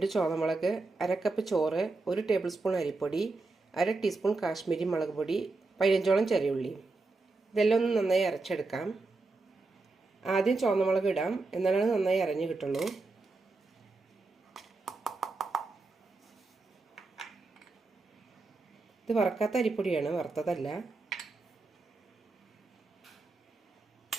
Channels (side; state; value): left; quieter; 3.5 dB